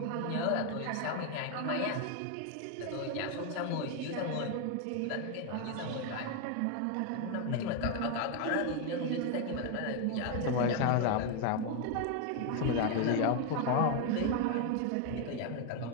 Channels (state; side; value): different; both; correlation 0.01